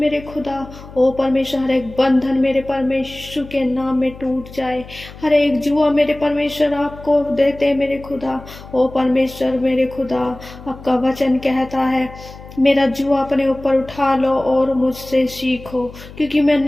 खुदा, ओ परमेश्वर हर एक बंधन मेरे परमेश्वर के नाम में टूट जाए। हर एक जुआ मेरे परमेश्वर आपको देते मेरे खुदा। ओ परमेश्वर मेरे खुदा, आपका वचन कहता है मेरा जुआ अपने ऊपर उठा लो और मुझसे सीखो, क्योंकि मैं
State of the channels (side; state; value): left; noise; hum, 17 dB below the sound